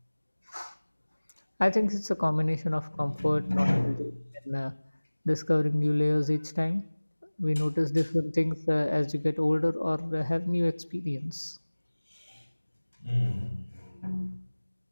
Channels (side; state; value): both; inverted; correlation -1.00